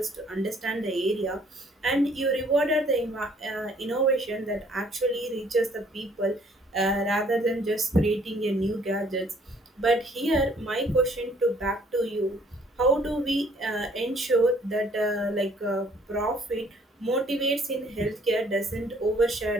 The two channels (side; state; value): both; normal; correlation 0.61